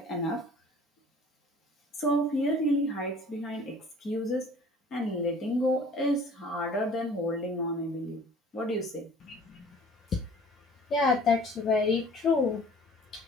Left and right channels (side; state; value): both; normal; correlation 0.49